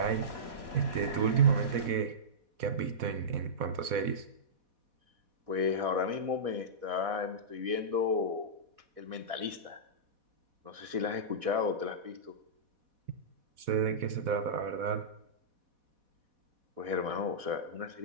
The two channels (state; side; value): late; left; 4.1 ms